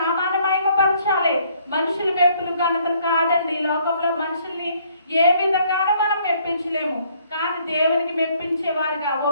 మహిమపరచాలి. మనుషుల మెప్పులు ఘనతలు కాదండి. ఈ లోకంలో మనుషుల్ని ఏ విధంగానూ మనం మెప్పించలేము, కానీ దేవునికి మెప్పించేవారుగా,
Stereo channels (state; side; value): inverted; both; correlation -0.64